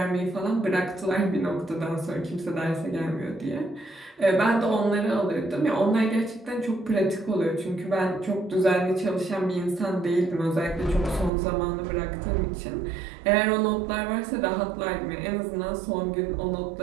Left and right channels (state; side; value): drops out; left; at 11.3 s